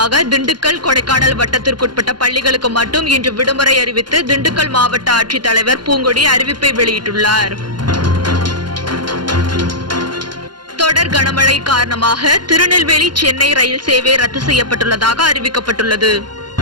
திண்டுக்கல், கொடைக்கானல் வட்டத்திற்குட்பட்ட பள்ளிகளுக்கு மட்டும் இன்று விடுமுறை அறிவித்து திண்டுக்கல் மாவட்ட ஆட்சித்தலைவர் பூங்கொடி அறிவிப்பை வெளியிட்டுள்ளார். தொடர் கனமழை காரணமாக திருநெல்வேலி, சென்னை ரயில் சேவை ரத்து செய்யப்பட்டுள்ளதாக அறிவிக்கப்பட்டுள்ளது.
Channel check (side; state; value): left; late; 0.71 ms